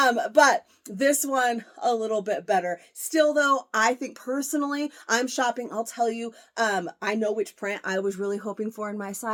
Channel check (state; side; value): identical; both; correlation 1.00